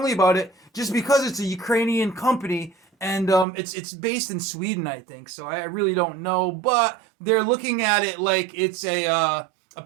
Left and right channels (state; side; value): drops out; left; at 3.5 s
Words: about it just because it's a Ukrainian company and it's based in Sweden, I think. So I really don't know, but they're looking at it like it's a